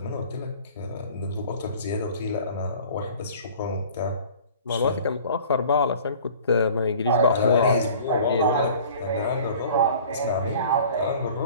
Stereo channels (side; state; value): both; inverted; correlation -0.47